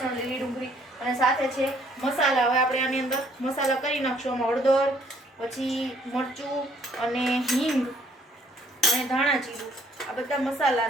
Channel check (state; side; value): normal; both; correlation 0.64